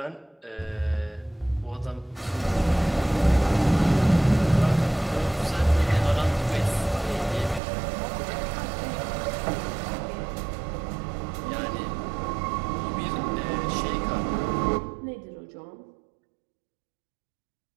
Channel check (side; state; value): left; drops out; at 7.6 s